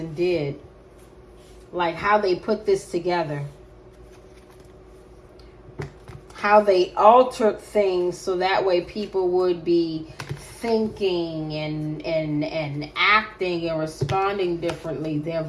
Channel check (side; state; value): both; identical; correlation 1.00